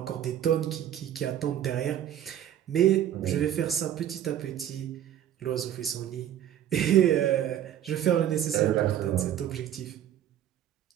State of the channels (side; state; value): left; quieter; 10.9 dB